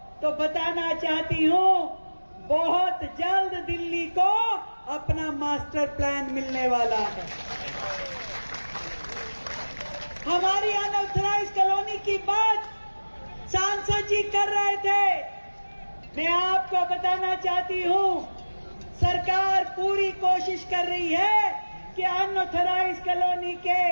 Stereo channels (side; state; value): both; inverted; correlation -1.00